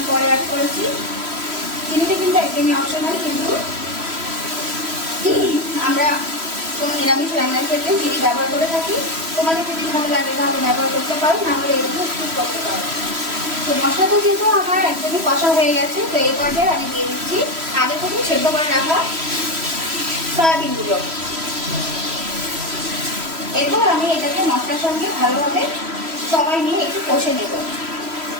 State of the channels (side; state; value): left; late; 3.1 ms